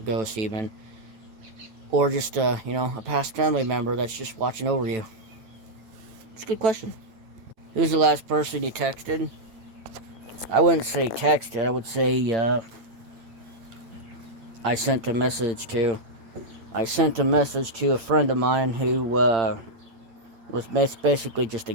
ghost even, or just a past family member that's just watching over you. It's a good question. Who's the last person you texted? I wouldn't say texted. I would say I sent a message to. I sent a message to a friend of mine who was basically just a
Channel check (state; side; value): late; left; 9.0 ms